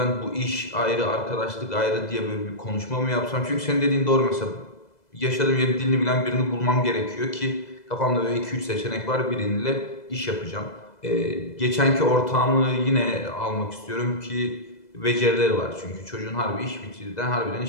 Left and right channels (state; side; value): late; right; 2.0 ms